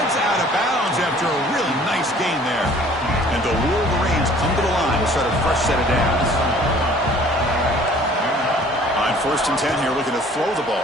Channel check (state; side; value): normal; both; correlation 0.53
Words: out of bounds after a really nice gain there. And the Wolverines come to the line to start a fresh set of downs. On 1st and 10 here, looking to throw the